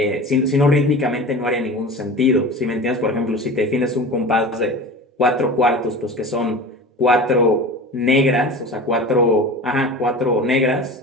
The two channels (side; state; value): both; normal; correlation 0.34